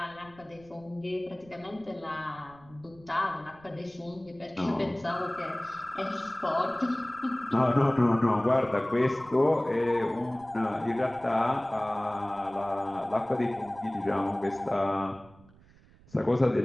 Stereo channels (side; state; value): right; noise; rumble, 25 dB below the sound